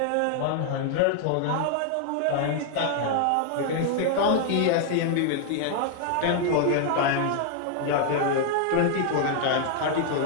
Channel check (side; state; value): both; different; correlation 0.00